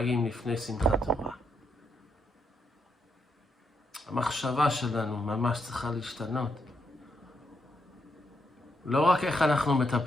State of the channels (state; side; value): normal; both; correlation 0.79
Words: לפני שמחת תורה. המחשבה שלנו ממש צריכה להשתנות. לא רק איך אנחנו